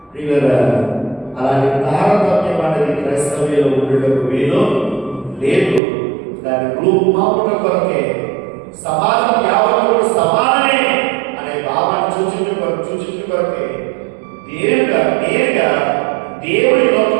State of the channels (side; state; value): left; drops out; at 5.8 s